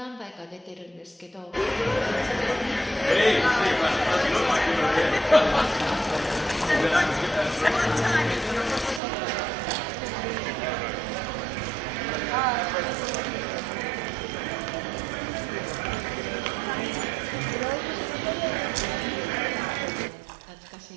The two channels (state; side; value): drops out; left; at 9.0 s